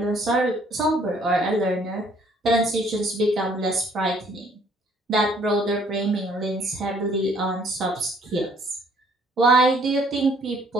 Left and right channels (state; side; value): normal; both; correlation 0.62